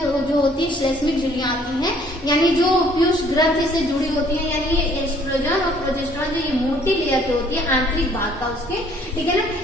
होती है श्लेष्मिक झिल्लियां आती हैं, यानी जो पीयूष ग्रंथि से जुड़ी होती है, यानी ये एस्ट्रोजन और प्रोजेस्टेरॉन जो ये मोटी लेयर की होती है आंतरिक भाग का उसके, ठीक है ना,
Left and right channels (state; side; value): normal; both; correlation 0.60